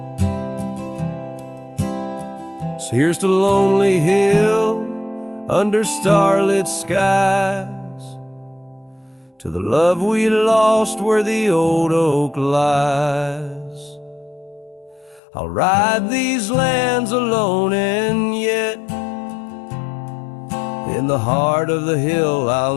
So here's to Lonely Hill under starlit skies, to the love we lost where the old oak lies. I'll ride these lands alone, and yet in the heart of the hill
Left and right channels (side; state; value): right; drops out; at 15.2 s